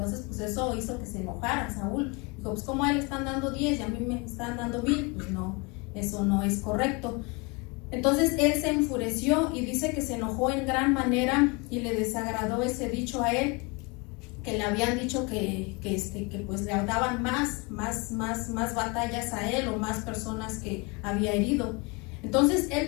pues eso hizo que se enojara Saúl. Dijo, pues ¿cómo a él le están dando 10 y a mí me están dando 1,000? Pues no, eso no es correcto. Entonces él se enfureció y dice que se enojó en gran manera y le desagradó ese dicho a él, que le habían dicho que pues le daban más batallas a él, o más personas que había herido. Entonces él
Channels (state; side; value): quieter; right; 28.9 dB